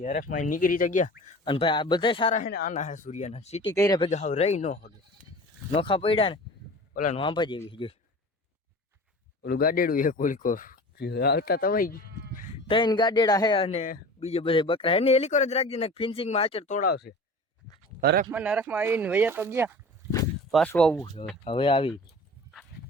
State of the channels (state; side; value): normal; both; correlation 0.38